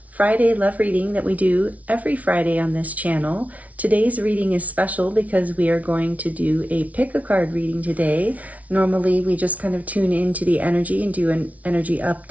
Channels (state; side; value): late; left; 0.069 ms